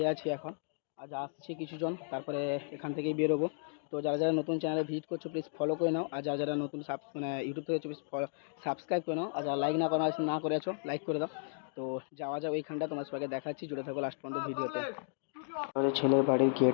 আছি এখন। আজ আসছে কিছুজন, তারপরে এখান থেকেই বেরোবো। তো যারা যারা নতুন চ্যানেলে ভিজিট করছো প্লিজ ফলো করে নাও, আর যারা যারা নতুন মানে ইউটিউব থেকে প্লিজ সাবস্ক্রাইব করে নাও, আর যারা লাইক না করে আছো লাইক করে দাও। তো যাওয়া যাও ওইখানটা, তোমার সবাইকে দেখাচ্ছি, জুড়ে থাকো লাস্ট পর্যন্ত ভিডিওতে। আমাদের ছেলের বাড়ির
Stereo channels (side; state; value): right; silent; digital silence